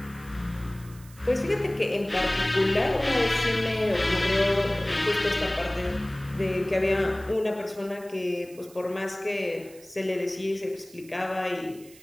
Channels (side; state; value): right; noise; hiss, 23 dB below the sound